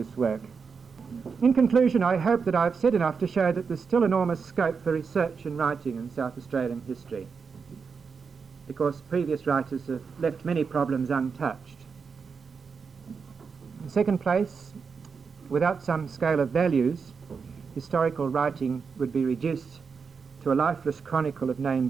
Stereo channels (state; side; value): quieter; left; 5.5 dB